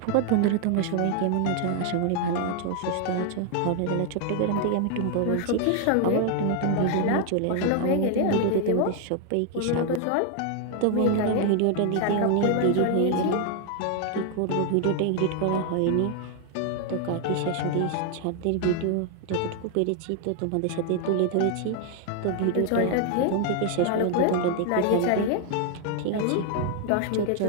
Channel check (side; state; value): both; different; correlation 0.00